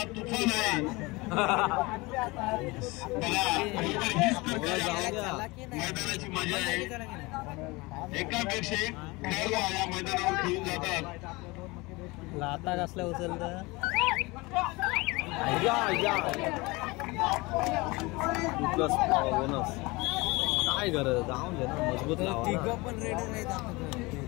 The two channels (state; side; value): quieter; right; 23.8 dB